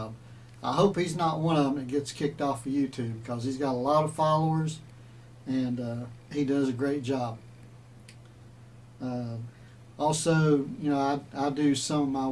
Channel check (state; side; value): identical; both; correlation 1.00